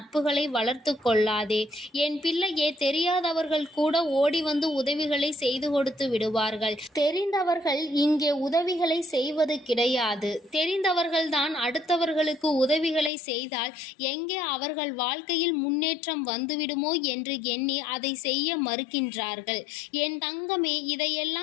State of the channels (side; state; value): right; drops out; at 13.1 s